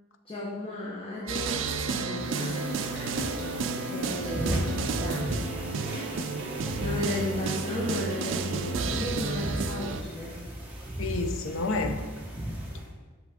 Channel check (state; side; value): normal; both; correlation 0.43